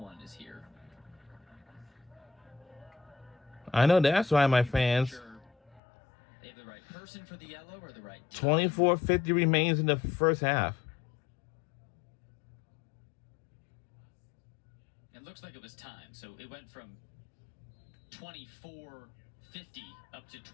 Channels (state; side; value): drops out; right; at 5.8 s